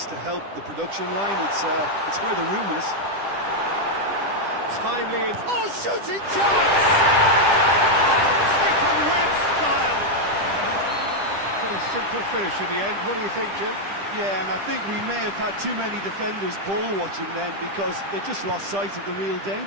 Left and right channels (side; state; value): left; late; 10 ms